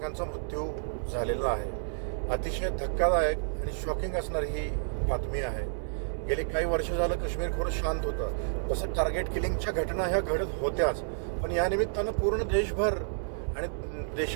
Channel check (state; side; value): silent; left; digital silence